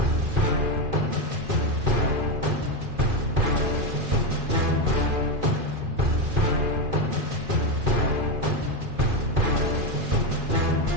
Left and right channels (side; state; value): left; late; 2.4 ms